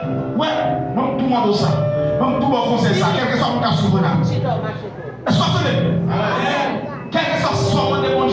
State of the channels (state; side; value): identical; both; correlation 1.00